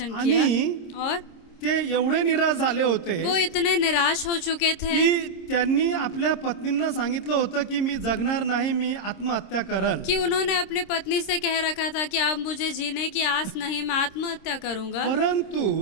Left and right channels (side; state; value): right; late; 26 ms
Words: आणि किया और ते एवढे निराश झाले होते वो इतने निराश हो चुके थे की त्यांनी आपल्या पत्नींना सांगितलं होतं की मी जगणार नाही, मी आत्महत्या करल. कि उन्होंने अपनी पत्नी से कह रखा था कि अब मुझे जीने की आस नहीं, मैं आत्महत्या करूंगा. परंतु